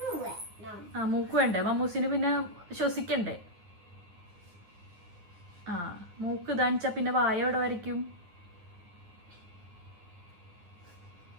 മൂക്ക് വേണ്ടേ മമ്മൂസിന്? പിന്നെ ശ്വസിക്കണ്ടേ? മൂക്ക് ഇതാണിച്ചാ പിന്നെ വായ എവിടെ വരയ്ക്കും?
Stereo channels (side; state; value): left; late; 9.6 ms